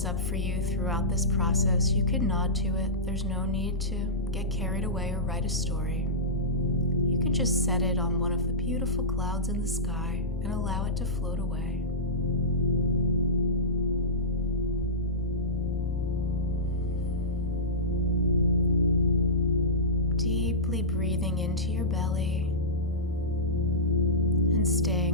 up for you throughout this process, you can nod to it. There's no need to get carried away or write a story. You can just set it on one of the beautiful clouds in the sky and allow it to float away. Deeply breathing into your belly and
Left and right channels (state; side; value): normal; both; correlation -0.18